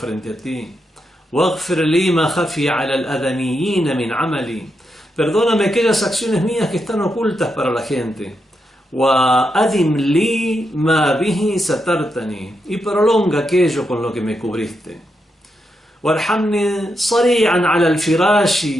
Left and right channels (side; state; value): both; normal; correlation 0.84